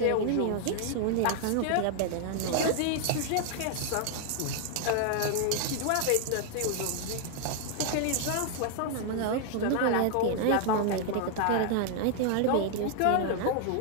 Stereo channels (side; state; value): both; different; correlation 0.00